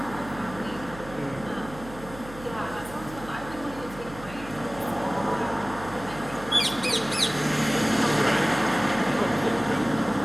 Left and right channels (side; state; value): right; noise; hum, 15 dB below the sound